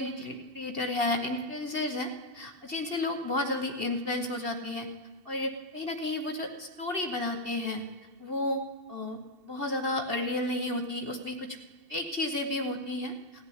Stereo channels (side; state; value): left; late; 2.7 ms